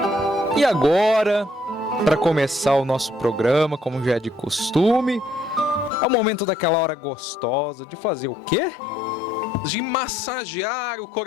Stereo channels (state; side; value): drops out; right; at 5.9 s